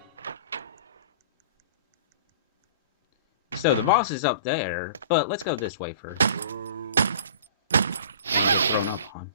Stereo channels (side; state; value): both; inverted; correlation -0.43